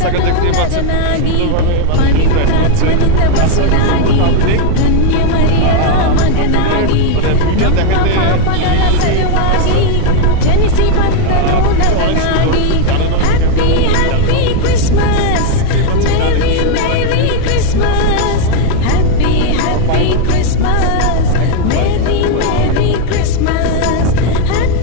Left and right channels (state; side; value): different; both; correlation 0.00